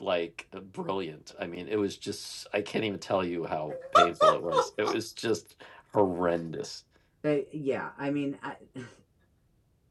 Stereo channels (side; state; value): both; identical; correlation 1.00